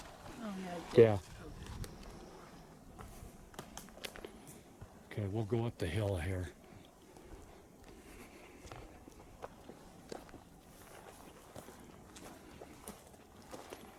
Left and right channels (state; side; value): identical; both; correlation 1.00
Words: Oh, yeah. It did. Yeah. Okay, we'll go up the hill here.